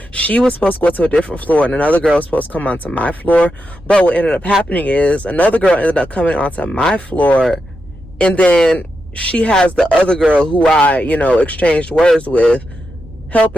she was supposed to go to a different floor, and another girl was supposed to come onto my floor. But what ended up happening is another girl ended up coming onto my floor, and then she has the other girl who I, you know, exchanged words with,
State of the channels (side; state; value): both; normal; correlation 0.87